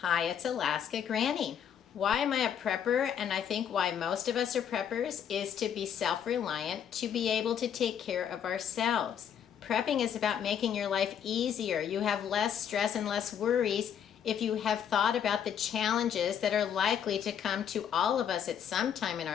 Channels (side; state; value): right; quieter; 8.7 dB